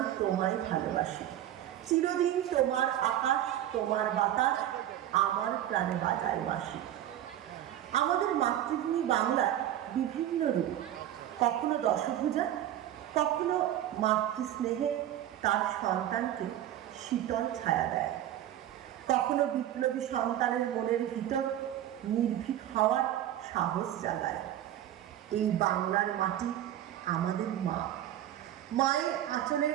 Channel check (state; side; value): quieter; left; 12.1 dB